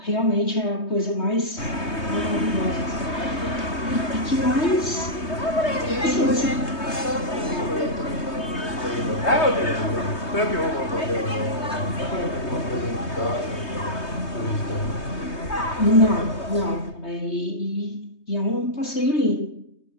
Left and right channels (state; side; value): late; right; 3.2 ms